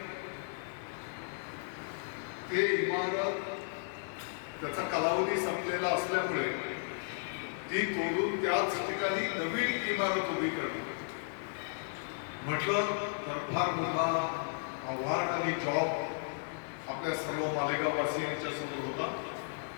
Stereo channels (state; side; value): silent; right; digital silence